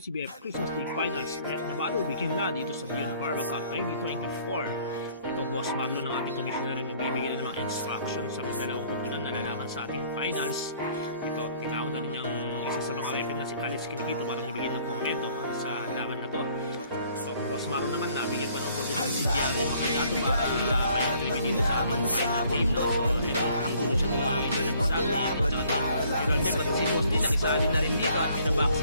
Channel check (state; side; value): inverted; both; correlation -0.60